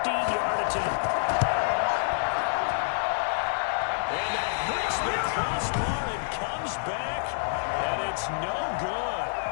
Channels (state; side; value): silent; right; digital silence